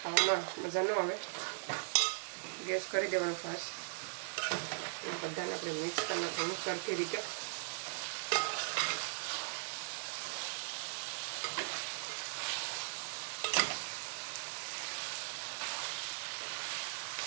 ખાવામાં મજા ન આવે. ગેસ કરી દેવાનો ફાસ્ટ. બધાને આપણે મિક્સ કરી નાખવાનું સરખી રીતે.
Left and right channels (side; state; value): left; silent; 52 dB below the other